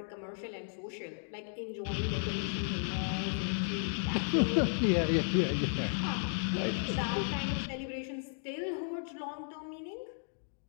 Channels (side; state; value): right; silent; digital silence